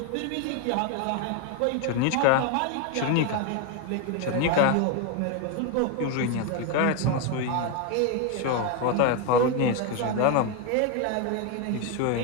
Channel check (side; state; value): both; different; correlation 0.02